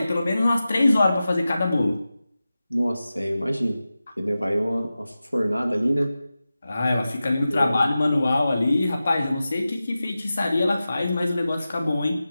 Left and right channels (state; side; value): inverted; both; correlation -0.94